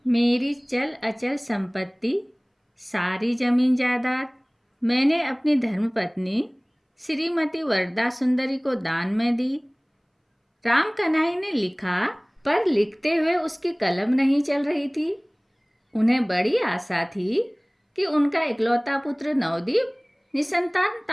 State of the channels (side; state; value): both; identical; correlation 1.00